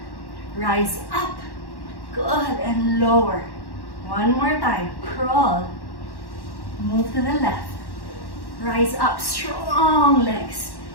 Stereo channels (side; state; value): right; late; 1.1 ms